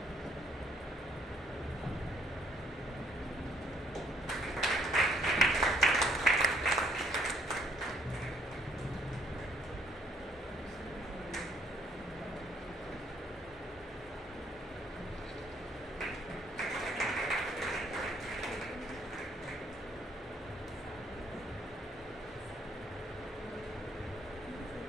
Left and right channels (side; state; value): both; normal; correlation 0.66